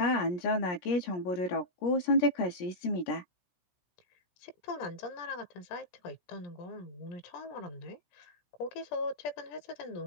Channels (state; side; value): late; right; 17 ms